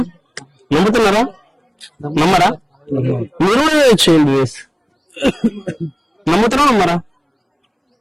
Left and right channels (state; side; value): identical; both; correlation 1.00